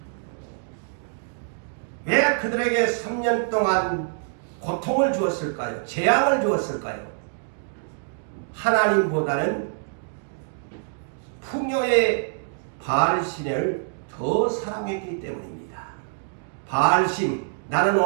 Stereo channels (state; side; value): silent; left; digital silence